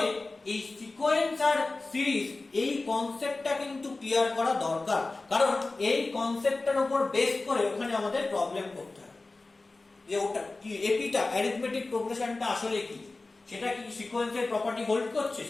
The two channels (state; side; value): quieter; right; 3.4 dB